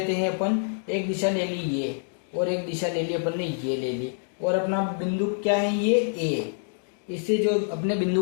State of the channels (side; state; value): right; silent; digital silence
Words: हैं अपन, एक दिशा ले ली ये और एक दिशा ले ली अपन ने ये ले ली, और अपना बिंदु क्या है ये A। इससे जो अपने बिंदु